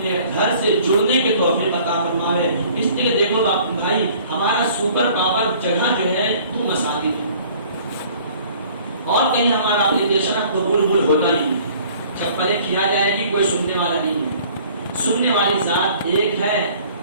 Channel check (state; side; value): inverted; both; correlation -0.53